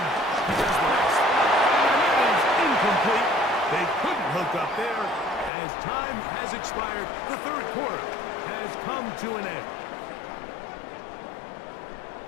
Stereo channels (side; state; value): right; drops out; at 5.5 s